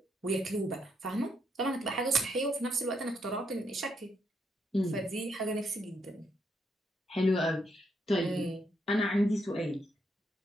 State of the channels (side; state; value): both; normal; correlation 0.77